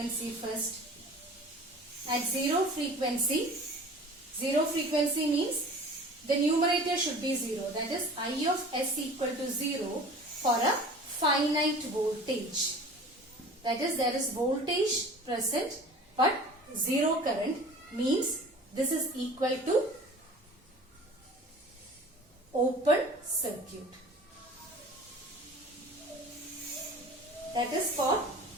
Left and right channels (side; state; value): both; normal; correlation 0.43